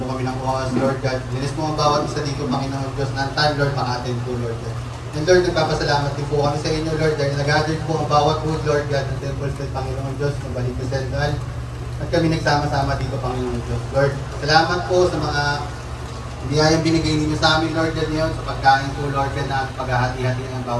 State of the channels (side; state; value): both; identical; correlation 1.00